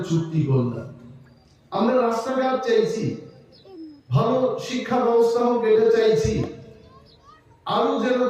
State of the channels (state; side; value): identical; both; correlation 1.00